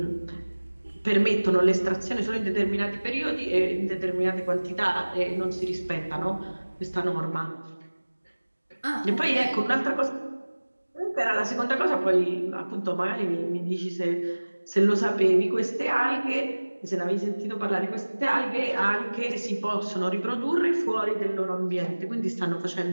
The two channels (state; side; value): inverted; both; correlation -1.00